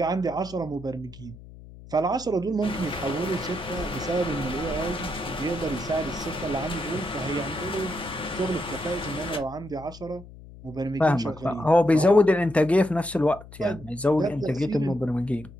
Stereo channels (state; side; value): noise; left; hum, 18 dB below the sound